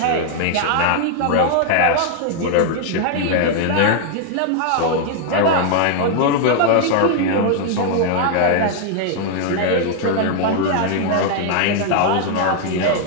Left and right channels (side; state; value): both; different; correlation 0.00